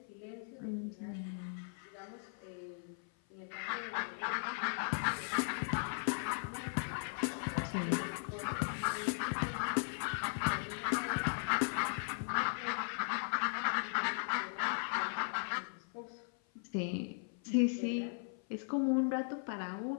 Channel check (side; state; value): right; silent; 52 dB below the other